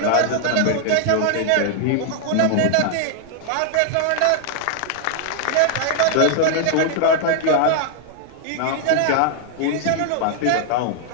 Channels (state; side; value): different; both; correlation 0.00